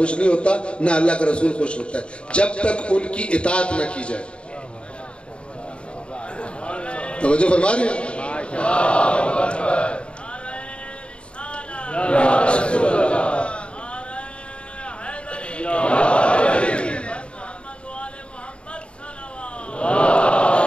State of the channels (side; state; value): right; late; 0.057 ms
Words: نہیں ہوتا نہ اللہ کا رسول خوش ہوتا ہے جب تک ان کی اطاعت نہ کی جائے. توجہ فرما رہے ہیں.